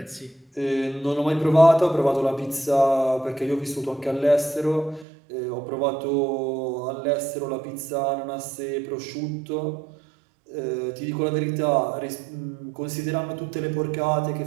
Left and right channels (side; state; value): left; drops out; at 5.1 s